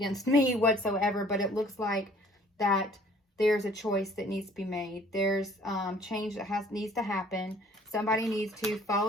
me whatsoever. But it looks like that there's a choice that needs to be made. There's change that needs to happen. Somebody needs to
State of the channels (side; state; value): both; normal; correlation 0.55